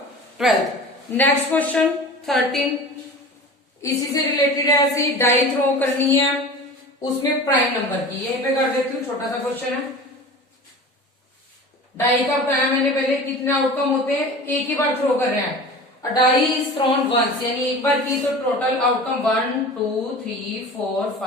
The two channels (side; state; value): both; normal; correlation 0.36